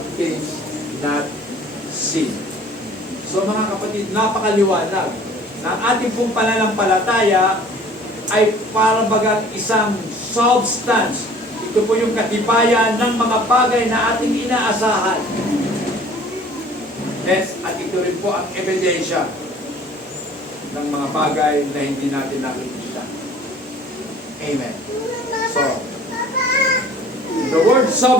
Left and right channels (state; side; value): normal; both; correlation 0.50